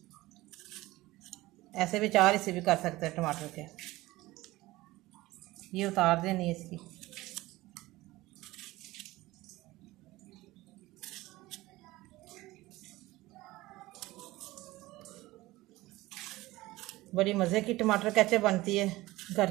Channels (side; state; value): left; quieter; 18.7 dB